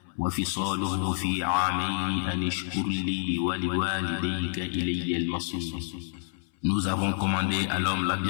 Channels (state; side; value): silent; right; 59 dB below the other